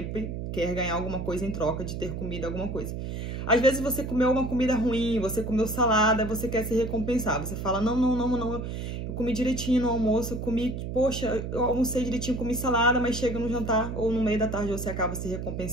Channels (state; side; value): noise; right; hum, 5 dB below the sound